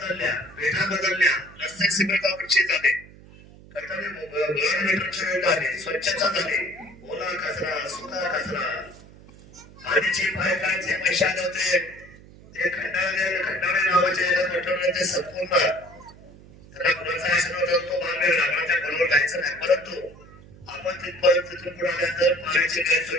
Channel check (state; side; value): noise; right; hum, 21 dB below the sound